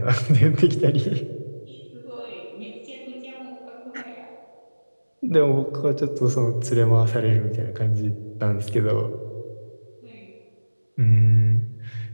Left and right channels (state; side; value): inverted; both; correlation -1.00